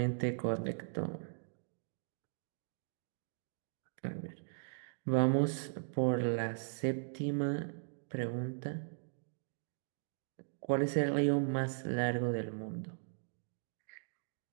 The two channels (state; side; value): silent; left; digital silence